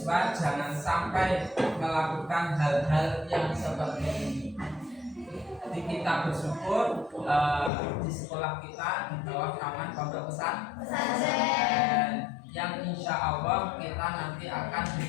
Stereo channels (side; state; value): right; drops out; at 7.7 s